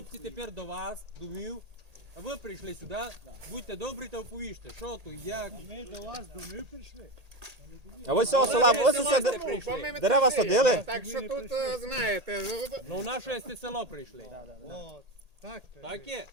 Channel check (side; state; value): left; late; 1.8 ms